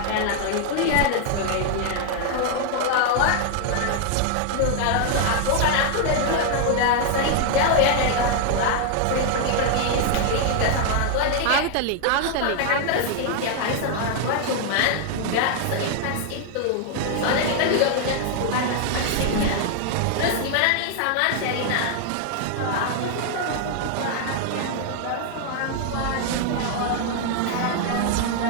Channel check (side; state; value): both; different; correlation 0.00